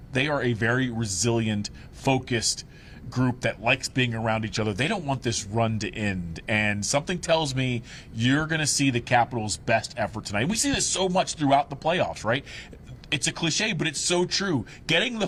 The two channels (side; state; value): both; identical; correlation 1.00